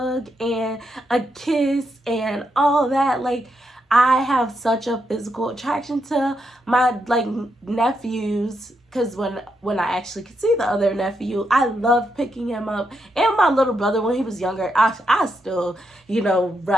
and a kiss and all that. Like, I have such a physical attraction to my like nephews, because when I actually could see the other nephew, I love picking him up. And my little brother, when he was younger, I still,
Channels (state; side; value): normal; both; correlation 0.82